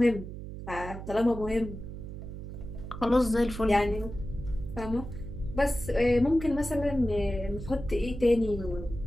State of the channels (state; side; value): noise; right; hum, 9 dB below the sound